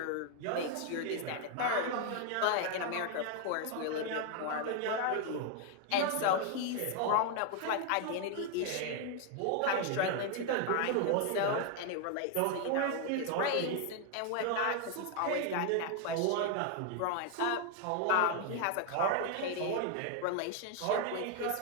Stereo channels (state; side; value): different; both; correlation 0.01